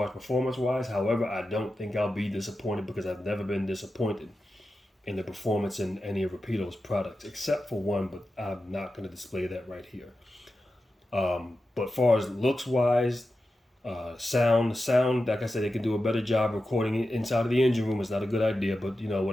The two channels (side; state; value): both; normal; correlation 0.92